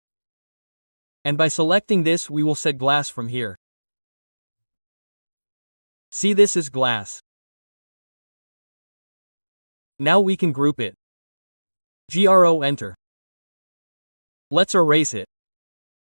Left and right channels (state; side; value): inverted; both; correlation -1.00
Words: And by selecting this we will set glass from here. See this is glass. Now we can group it. GRO enter. Let's erase it.